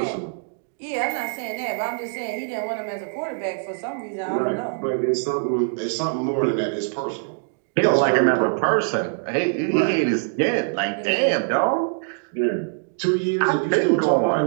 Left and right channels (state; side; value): silent; left; digital silence